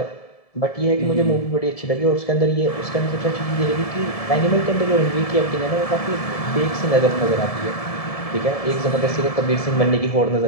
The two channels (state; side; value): late; right; 1.7 ms